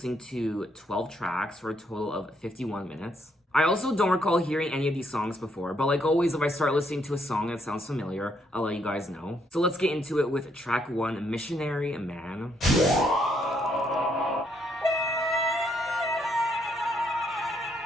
to 12 tracks for a total of 51 minutes. I also don't recall hearing any of these songs before, but like always, if I start listening to a song that sounds familiar, I'll let you guys know. So let's get into it with track 1, Missionary Man.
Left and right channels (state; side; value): normal; both; correlation 0.73